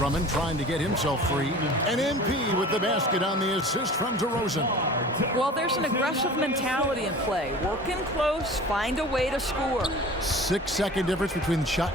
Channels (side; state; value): both; normal; correlation 0.41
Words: trying to get himself free. And MP with the basket on the assist from DeRozan. Well, there's an aggressive mentality in play. Working close, find a way to score. 6-second difference between shot